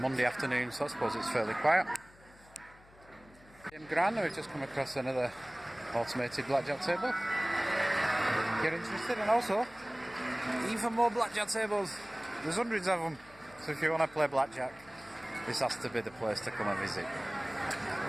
afternoon, so I suppose it's fairly quiet. MGM Grand, we've just come across another automated blackjack table. You're interested, and also even more blackjack tables. There's hundreds of them, so if you want to play blackjack, this has to be the place to come and visit.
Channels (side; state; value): left; noise; hum, 25 dB below the sound